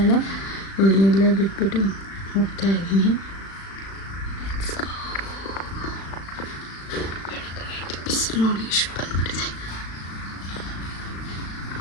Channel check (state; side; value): late; right; 36 ms